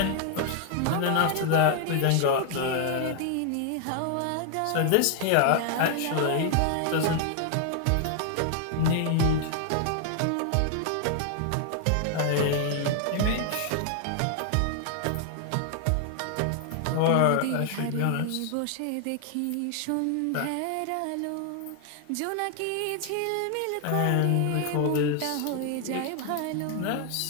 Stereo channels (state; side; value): different; both; correlation 0.00